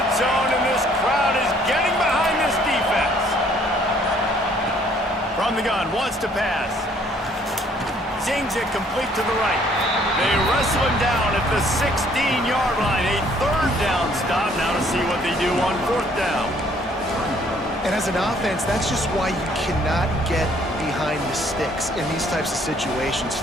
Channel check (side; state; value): both; normal; correlation 0.62